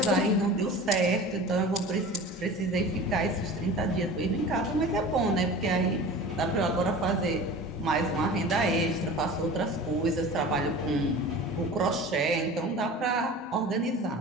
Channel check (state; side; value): normal; both; correlation 0.37